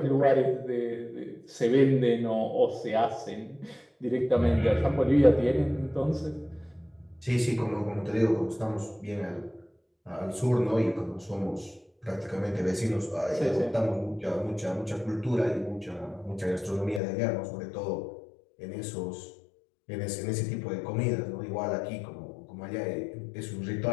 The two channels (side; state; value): right; drops out; at 17.0 s